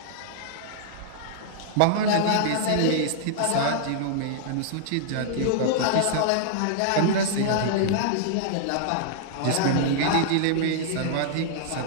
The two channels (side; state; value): both; different; correlation -0.01